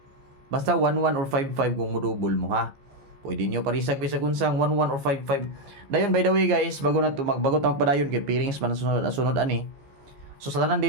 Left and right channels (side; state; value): left; late; 15 ms